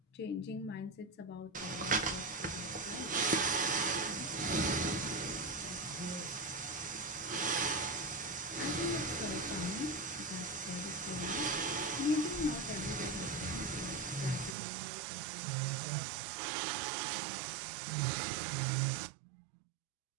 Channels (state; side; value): drops out; left; at 14.6 s